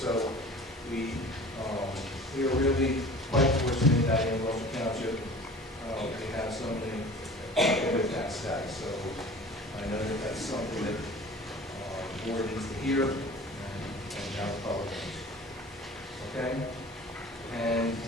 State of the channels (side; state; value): both; normal; correlation 0.43